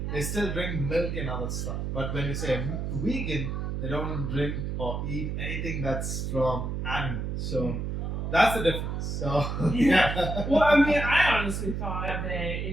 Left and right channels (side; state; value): right; noise; hum, 3 dB below the sound